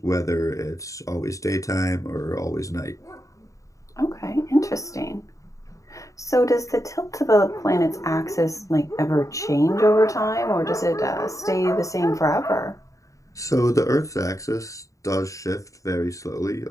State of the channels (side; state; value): right; late; 0.16 ms